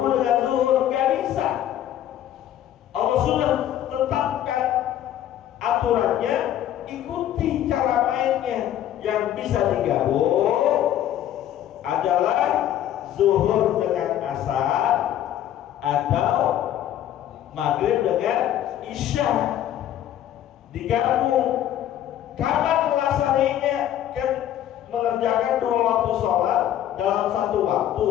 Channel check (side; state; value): right; quieter; 11.6 dB